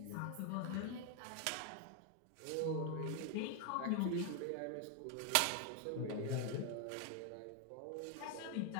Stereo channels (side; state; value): both; different; correlation 0.01